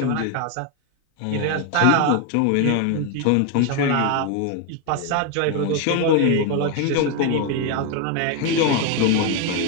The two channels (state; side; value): different; both; correlation 0.01